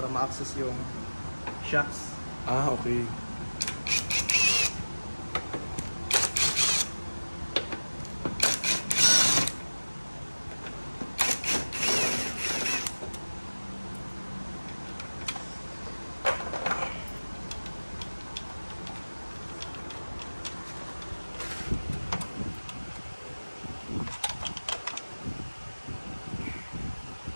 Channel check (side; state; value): both; inverted; correlation -1.00